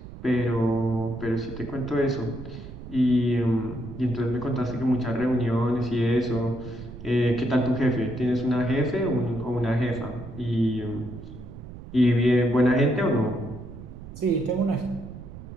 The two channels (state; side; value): noise; right; rumble, 14 dB below the sound